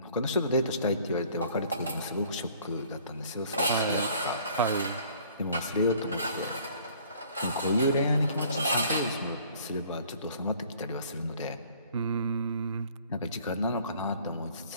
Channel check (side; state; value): both; inverted; correlation -0.55